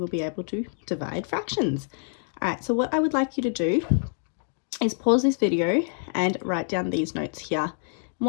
be able to divide fractions. All right, so what I would like you to do is pause this video and write down these notes here. And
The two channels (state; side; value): silent; right; 61 dB below the other